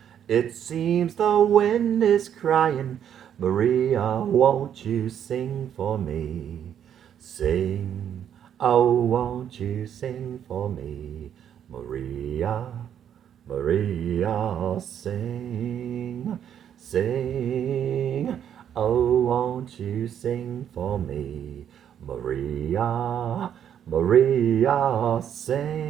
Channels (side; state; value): left; quieter; 9.3 dB